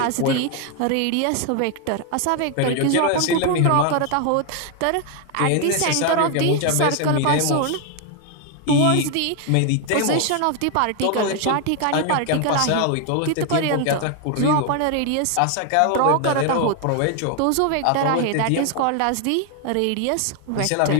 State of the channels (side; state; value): both; different; correlation 0.01